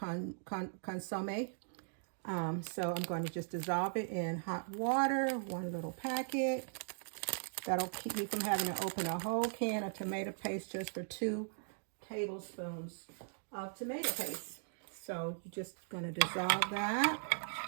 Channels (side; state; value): left; silent; digital silence